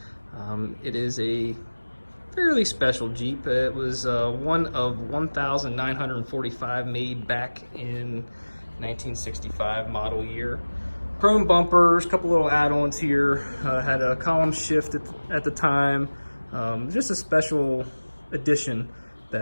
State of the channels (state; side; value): inverted; both; correlation -1.00